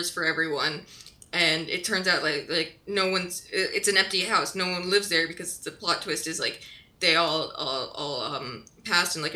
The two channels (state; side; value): identical; both; correlation 1.00